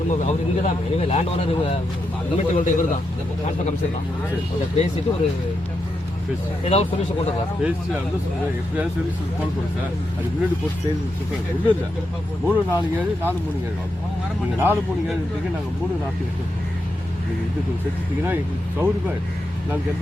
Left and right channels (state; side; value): normal; both; correlation 0.85